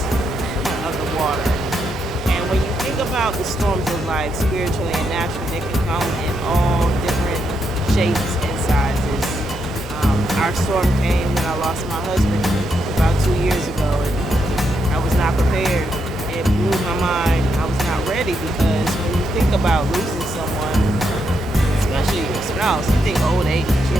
of the water. And when you think about the storms of life, spiritually and naturally, they can come in all different shapes and sizes. Our storm came when I lost my husband about 2 years ago, and I was not prepared. It blew my mind. I was not ready because when you think about losing someone, especially your spouse, you think old age,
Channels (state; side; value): normal; both; correlation 0.80